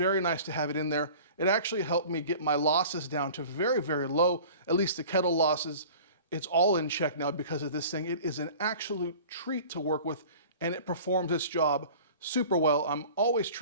nice to have it in there. It actually helped me get my losses down to very, very low, at least the kettle losses. It's all in check now because of this thing. It is an absolute treat to work with and it performs its job super well. I'm always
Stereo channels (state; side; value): inverted; both; correlation -0.43